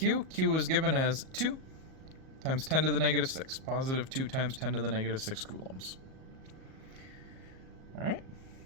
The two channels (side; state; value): left; late; 37 ms